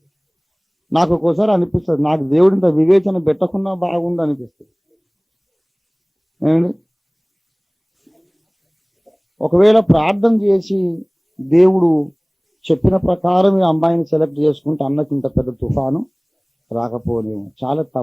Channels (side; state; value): both; identical; correlation 1.00